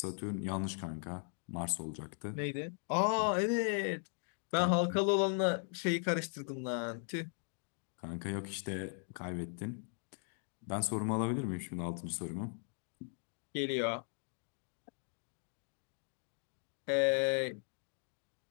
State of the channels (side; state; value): right; silent; 52 dB below the other